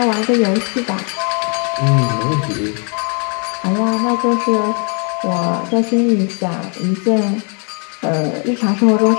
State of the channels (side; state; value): right; quieter; 38.0 dB